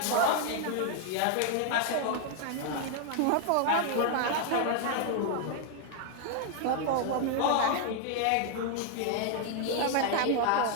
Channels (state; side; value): different; both; correlation 0.00